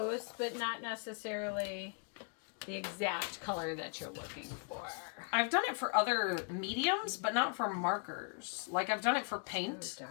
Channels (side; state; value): right; quieter; 38.1 dB